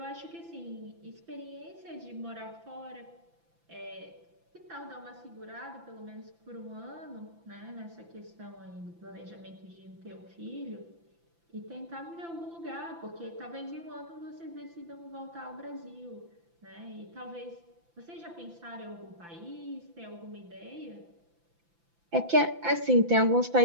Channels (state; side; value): late; left; 5.9 ms